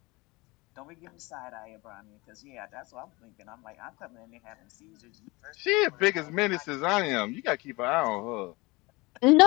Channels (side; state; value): right; quieter; 23.9 dB